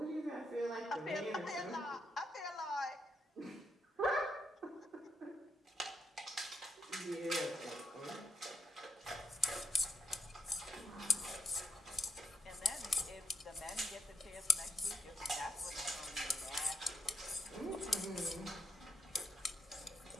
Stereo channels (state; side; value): normal; both; correlation 0.77